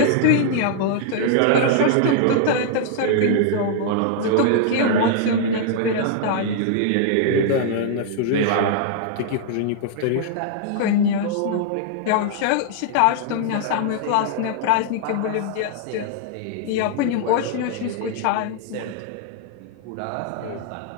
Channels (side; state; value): both; different; correlation -0.01